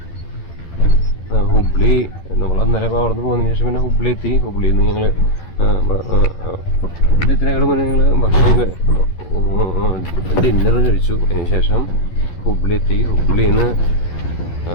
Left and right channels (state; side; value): late; right; 12 ms